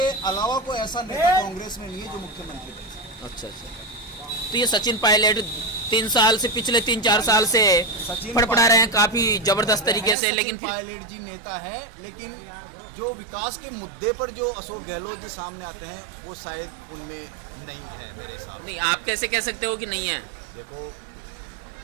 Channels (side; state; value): left; drops out; at 10.2 s